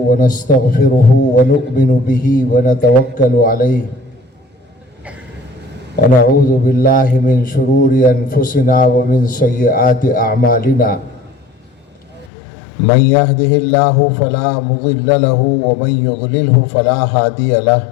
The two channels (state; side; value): drops out; right; at 12.3 s